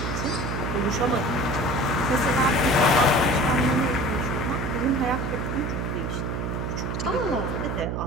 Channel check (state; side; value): noise; right; hum, 2 dB below the sound